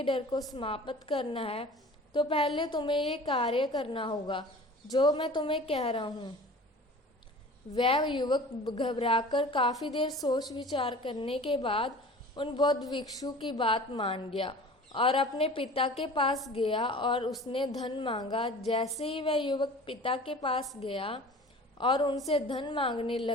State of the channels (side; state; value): both; normal; correlation 0.42